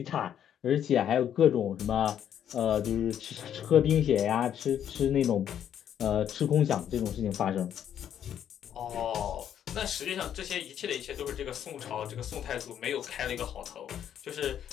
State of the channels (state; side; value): quieter; right; 9.7 dB